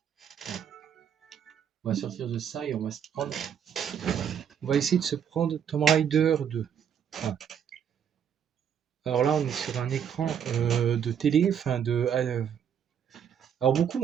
On va sortir de ça et on va se prendre. On va essayer de se prendre Tomb Raider 2. Enfin, alors là, on est sur un écran de télé, alors beaucoup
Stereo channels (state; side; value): quieter; left; 8.4 dB